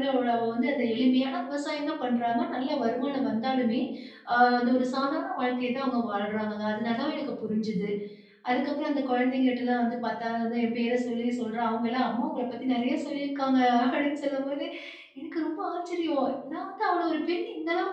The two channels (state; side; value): identical; both; correlation 1.00